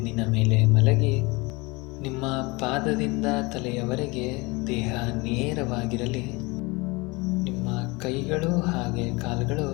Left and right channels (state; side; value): quieter; right; 25.1 dB